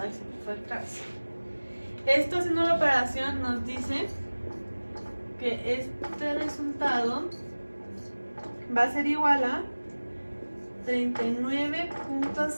se me fue atrás. Esto, haciendo la operación, nos dice que este resultado va a ser igual a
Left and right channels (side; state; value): both; inverted; correlation -1.00